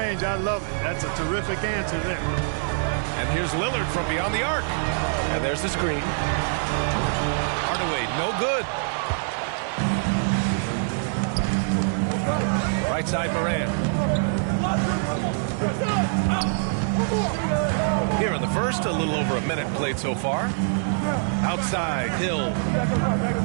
I love it. That's a terrific answer there. And here's Lillard from beyond the arc. And there's the screen. Hardaway, no good. Right side, Morant. Here in the first, a little over a minute played so far. Outside, Hill.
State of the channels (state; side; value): silent; left; digital silence